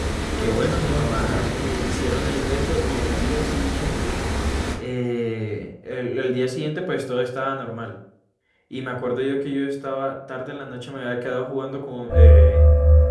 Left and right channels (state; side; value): identical; both; correlation 1.00